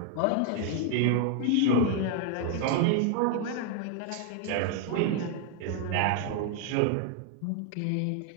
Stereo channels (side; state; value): both; different; correlation 0.00